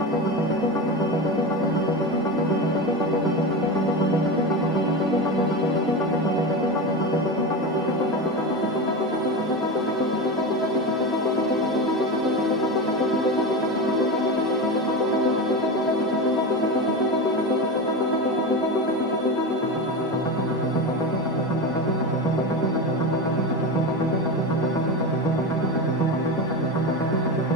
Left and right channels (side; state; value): both; normal; correlation 0.21